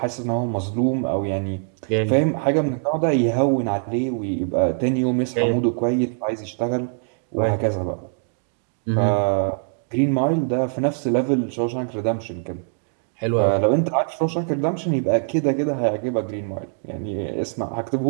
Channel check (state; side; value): silent; left; digital silence